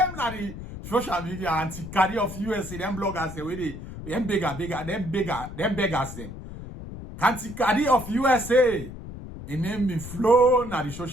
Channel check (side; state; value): left; noise; rumble, 11 dB below the sound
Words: na the social media anti-Kadi of USA, them bloggers the way they them beggars them. Anti-Kadi of USA, in name be flow na the